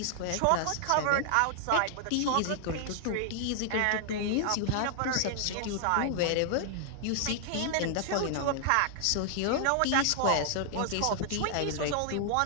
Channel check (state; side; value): different; both; correlation -0.01